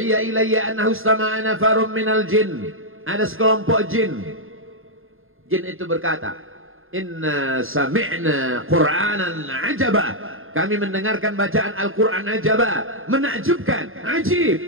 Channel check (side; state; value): left; late; 0.60 ms